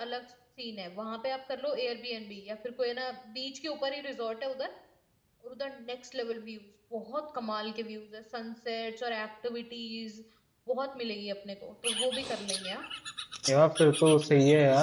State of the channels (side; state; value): both; identical; correlation 1.00